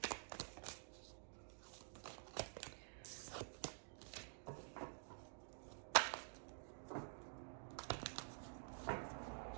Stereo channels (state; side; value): silent; left; digital silence